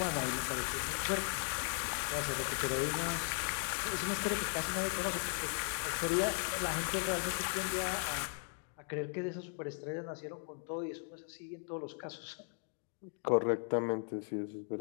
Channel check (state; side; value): silent; right; 53 dB below the other